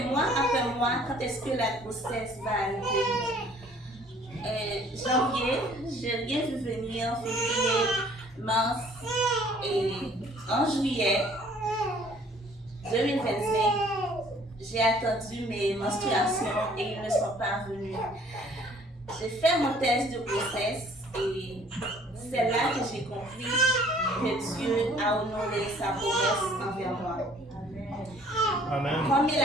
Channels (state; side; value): normal; both; correlation 0.57